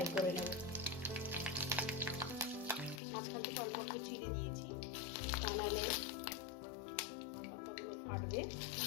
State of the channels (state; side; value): drops out; right; at 3.0 s